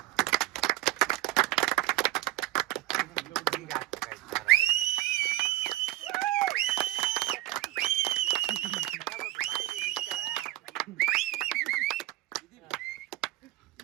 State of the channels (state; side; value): quieter; left; 16.2 dB